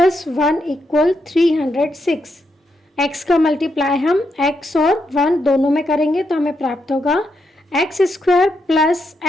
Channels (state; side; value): normal; both; correlation 0.81